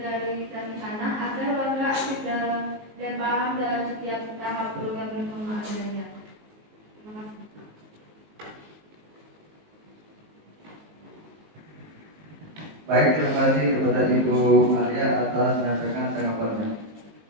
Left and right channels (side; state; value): left; late; 19 ms